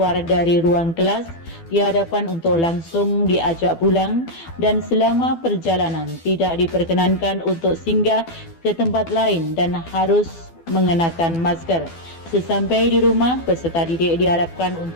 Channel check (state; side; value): late; right; 12 ms